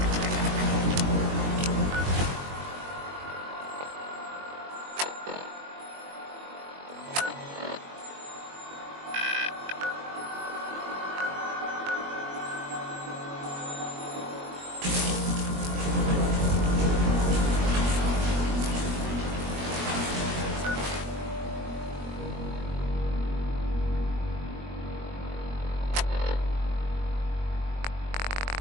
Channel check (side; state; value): left; late; 21 ms